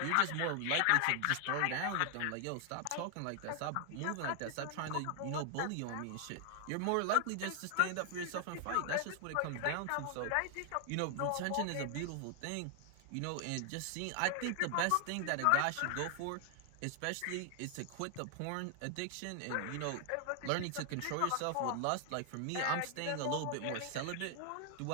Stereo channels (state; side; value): different; both; correlation 0.00